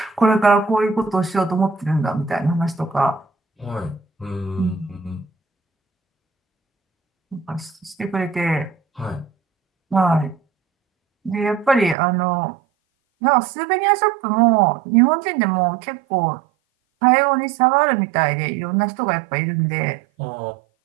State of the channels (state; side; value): drops out; left; at 12.0 s